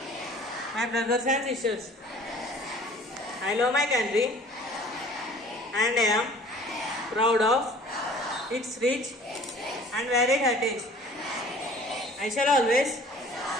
my brothers and sisters. I love my country and I am proud of its rich and varied heritage. I shall always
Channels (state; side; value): normal; both; correlation 0.49